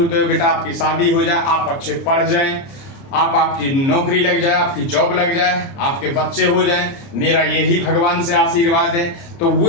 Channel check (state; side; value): late; right; 30 ms